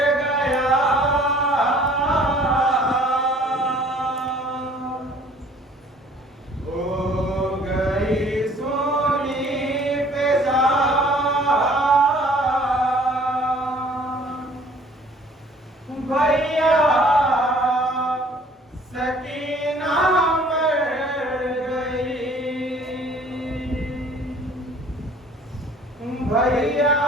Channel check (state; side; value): normal; both; correlation 0.54